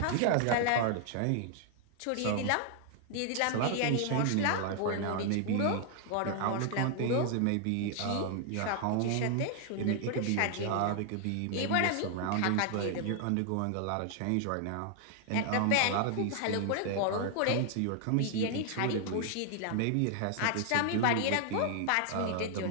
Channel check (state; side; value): different; both; correlation 0.00